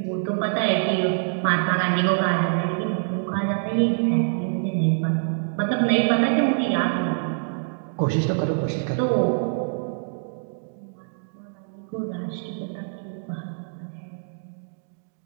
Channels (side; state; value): left; silent; digital silence